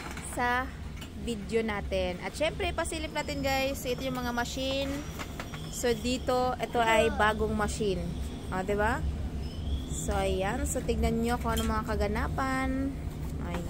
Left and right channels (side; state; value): both; identical; correlation 1.00